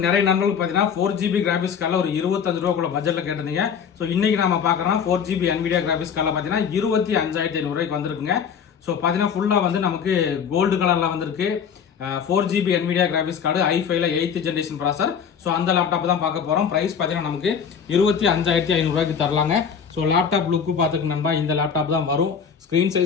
நிறைய நண்பர்கள் பார்த்தீங்கன்னா 4GB கிராஃபிக்ஸ் கார்டில் ஒரு 25 ரூபாக்குள்ள பட்ஜெட்டில் கேட்டிருந்தீங்க. ஸோ இன்னைக்கு நம்ம பார்க்குறோம் 4GB NVIDIA கிராஃபிக்ஸ் கார்டில் பார்த்தீங்கன்னா 25,500 ரூபாய்க்கு வந்திருக்குங்க. ஸோ பார்த்தீங்கன்னா ஃபுல்லாக வந்து நமக்கு கோல்டு கலரில் வந்திருக்கு. 4GB NVIDIA கிராஃபிக்ஸ் கார்டு i5ல 8th ஜென்ரேஷன் ப்ராசர். ஸோ அந்த லேப்டாப் தான் பார்க்க போகிறோம். ப்ரைஸ் பார்த்தீங்கன்னா நமக்கு 25,500 ரூபாய்க்கு தரலாங்க. ஸோ லேப்டாப் லுக்கு பார்த்துக்கு நண்பா இந்த லேப்டாப் தான் வரும். ஸ்க்ரீன்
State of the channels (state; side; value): quieter; right; 7.1 dB